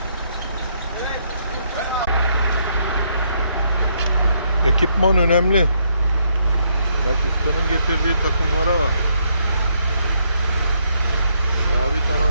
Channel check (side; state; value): both; inverted; correlation -0.74